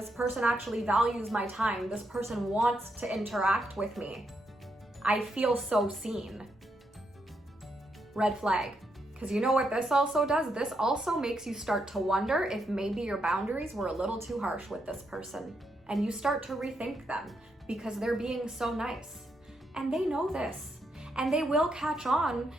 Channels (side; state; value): both; normal; correlation 0.80